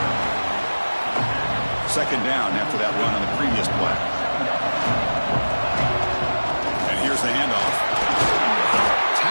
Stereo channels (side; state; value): both; inverted; correlation -1.00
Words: 2nd down after that run on the previous play. And here's the handoff.